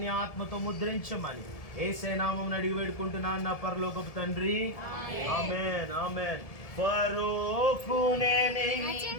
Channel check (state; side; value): late; right; 1.7 ms